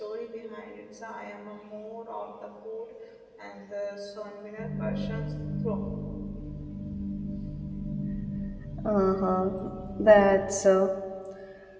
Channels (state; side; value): identical; both; correlation 1.00